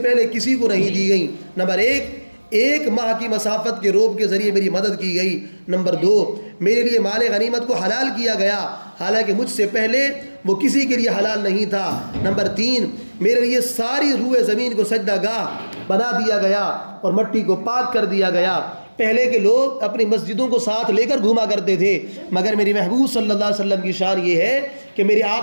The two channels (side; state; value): both; inverted; correlation -1.00